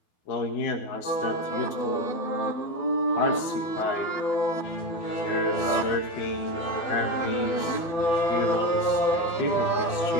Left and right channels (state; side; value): late; right; 12 ms